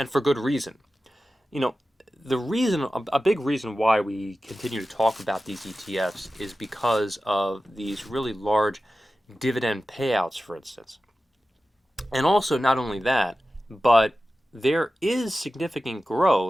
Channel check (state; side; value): normal; both; correlation 0.94